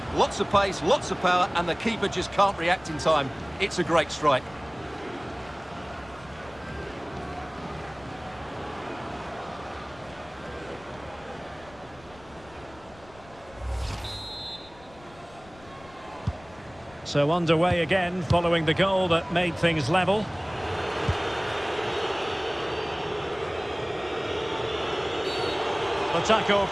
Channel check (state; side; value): noise; left; rumble, 23 dB below the sound